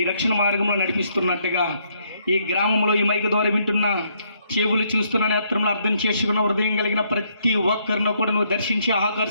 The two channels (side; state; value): both; inverted; correlation -0.72